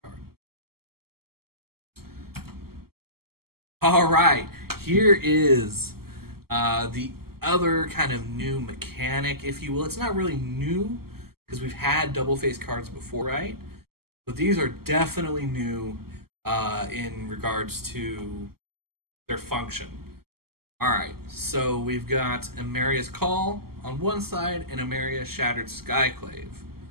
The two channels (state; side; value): late; left; 0.95 ms